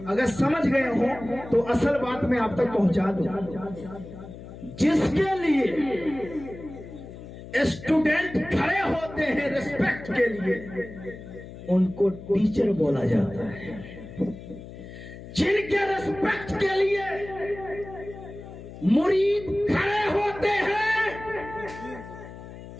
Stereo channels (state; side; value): noise; left; hum, 14 dB below the sound